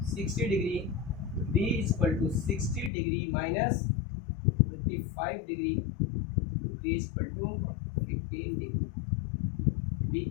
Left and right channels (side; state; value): right; drops out; at 2.9 s